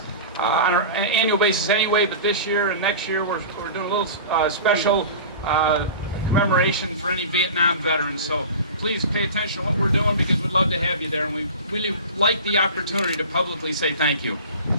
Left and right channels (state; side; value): inverted; both; correlation -0.35